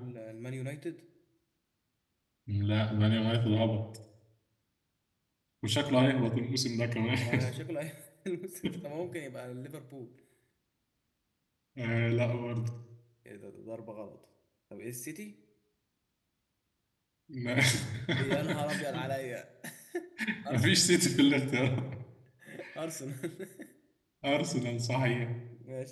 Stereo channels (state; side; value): identical; both; correlation 1.00